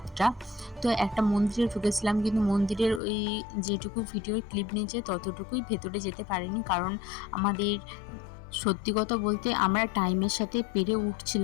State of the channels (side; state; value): right; drops out; at 3.0 s